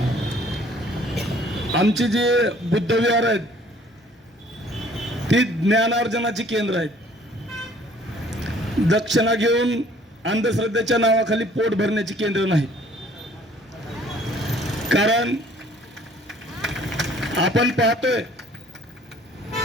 आमची जी बुद्धविहार आहेत ती ज्ञानार्जनाची केंद्र आहेत. दक्षिणा घेऊन अंधश्रद्धेच्या नावाखाली पोट भरण्याची केंद्र नाही. कारण आपण पाहतोय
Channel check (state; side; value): normal; both; correlation 0.56